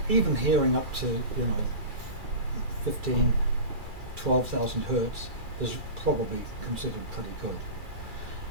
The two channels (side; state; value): left; late; 2.3 ms